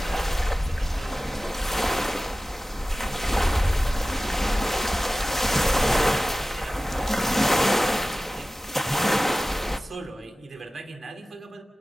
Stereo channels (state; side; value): normal; both; correlation 0.96